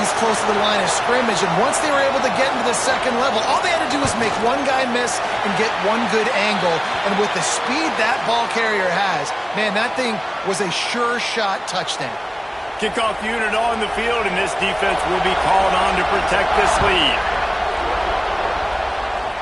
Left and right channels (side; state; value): both; identical; correlation 1.00